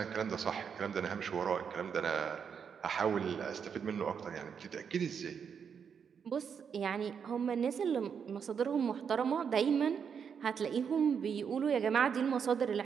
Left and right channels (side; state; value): left; quieter; 7.0 dB